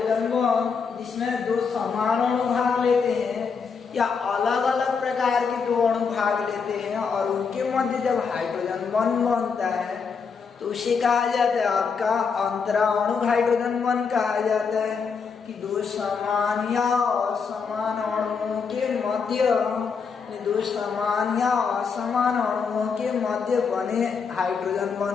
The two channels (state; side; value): quieter; right; 5.7 dB